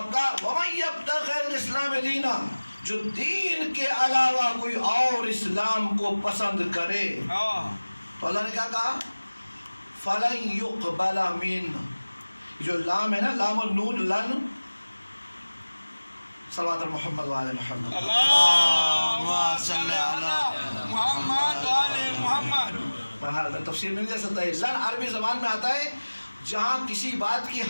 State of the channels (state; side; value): inverted; both; correlation -1.00